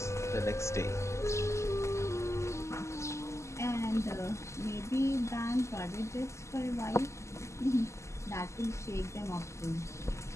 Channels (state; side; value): late; right; 0.13 ms